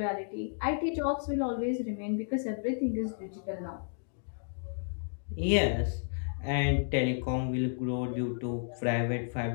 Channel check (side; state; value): right; silent; digital silence